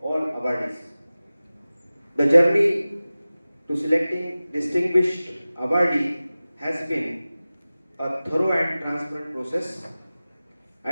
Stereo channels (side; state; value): both; inverted; correlation -0.97